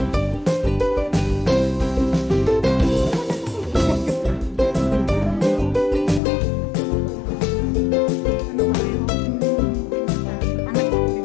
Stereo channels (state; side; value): drops out; right; at 6.2 s